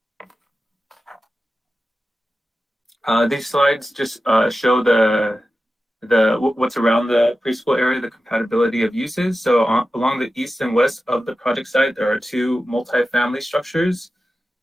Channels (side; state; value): both; normal; correlation 0.93